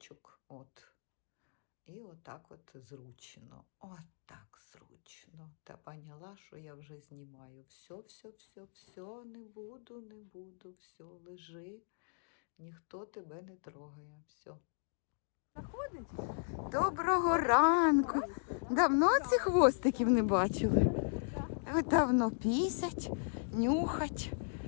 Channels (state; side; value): silent; right; digital silence